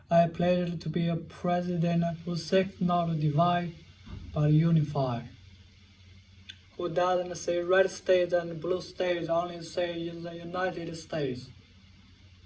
I pledge to be a president who seeks not to divide, but unify. Who doesn't say red states and blue states, only say in the United States.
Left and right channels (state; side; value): identical; both; correlation 1.00